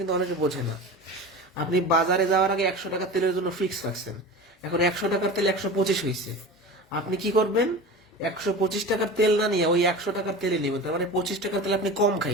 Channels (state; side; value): normal; both; correlation 0.32